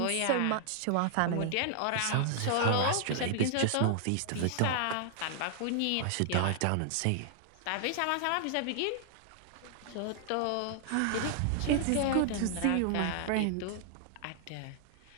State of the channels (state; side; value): different; both; correlation 0.00